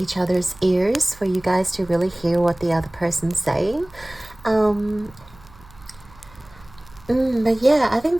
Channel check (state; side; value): noise; right; hum, 24 dB below the sound